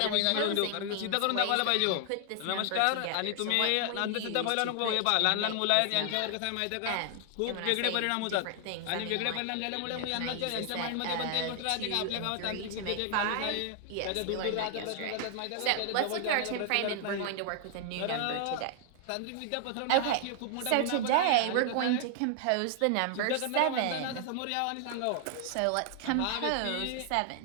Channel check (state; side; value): different; both; correlation 0.00